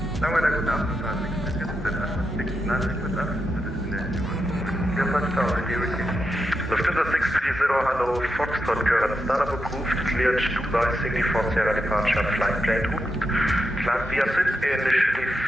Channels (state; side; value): normal; both; correlation 0.86